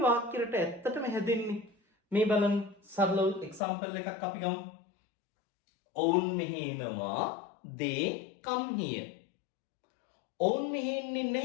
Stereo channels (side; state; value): right; drops out; at 3.6 s